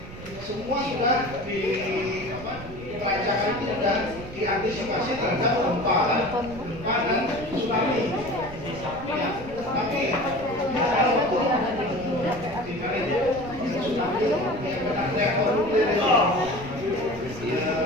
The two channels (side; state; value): right; noise; rumble, 14 dB below the sound